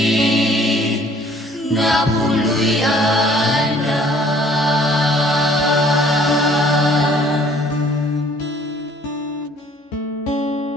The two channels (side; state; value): both; normal; correlation 0.56